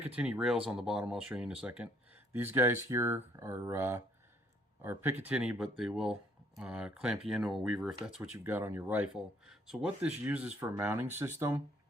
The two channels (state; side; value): normal; both; correlation 0.64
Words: rails on the bottom. I'll show you in a second. These guys here are Picatinny, but they will clamp you into a Weaver if that's what you've got on your rifle. So what this uses for a mounting system,